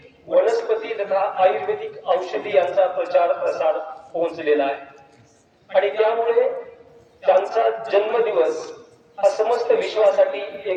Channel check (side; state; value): both; identical; correlation 1.00